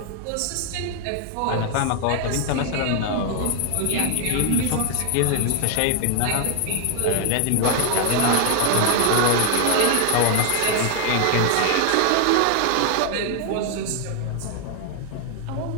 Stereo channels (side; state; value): both; different; correlation 0.00